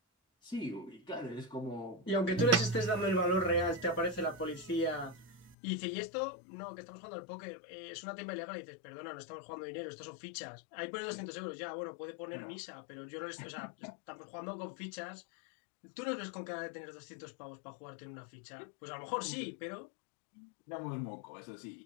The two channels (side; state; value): right; drops out; at 5.6 s